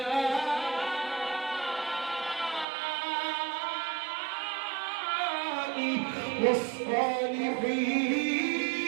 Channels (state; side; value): drops out; left; at 2.7 s